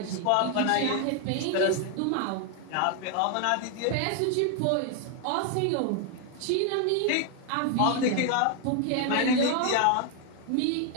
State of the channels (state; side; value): different; both; correlation 0.00